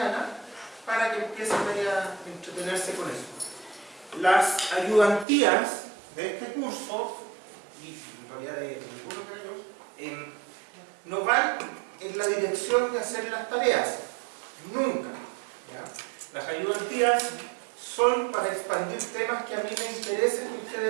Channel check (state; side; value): drops out; left; at 5.2 s